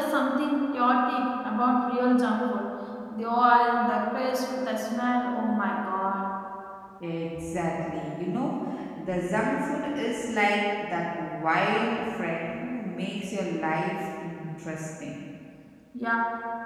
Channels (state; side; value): identical; both; correlation 1.00